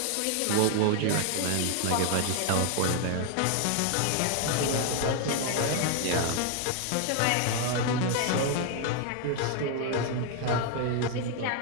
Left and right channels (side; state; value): both; different; correlation 0.00